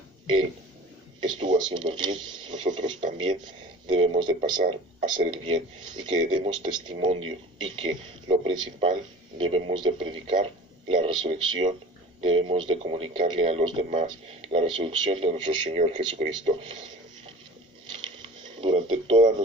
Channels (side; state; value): both; normal; correlation 0.42